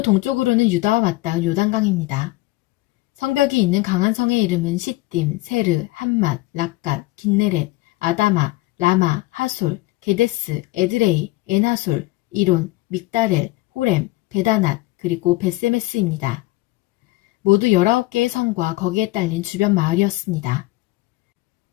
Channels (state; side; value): quieter; right; 19.7 dB